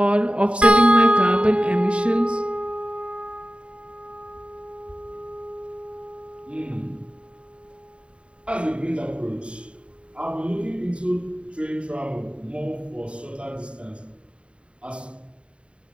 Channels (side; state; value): left; late; 0.058 ms